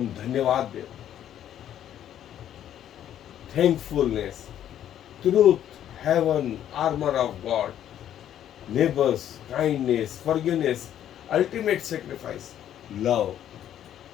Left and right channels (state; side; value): quieter; right; 10.8 dB